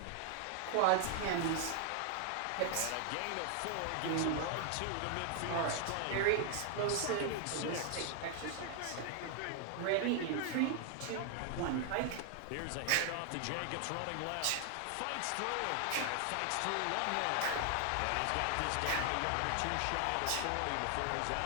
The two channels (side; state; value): both; different; correlation 0.00